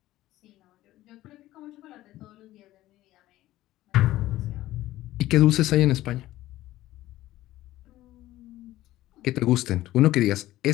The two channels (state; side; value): quieter; right; 15.6 dB